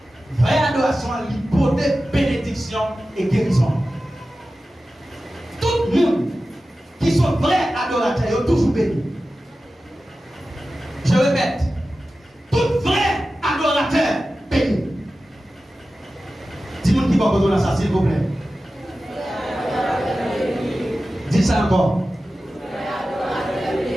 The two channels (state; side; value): normal; both; correlation 0.94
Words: vraie adoration l'hypothèse bénédiction et guérison. Tout le monde qui sont vrais adorateurs sont toujours bénis. Je répète, tout vrai adorateur béni. Dis-moi qui va poser ça s'il vous plaît. Dis ça encore.